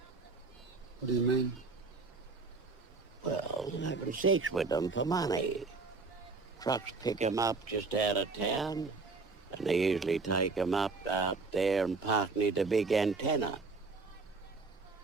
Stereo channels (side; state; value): left; quieter; 4.1 dB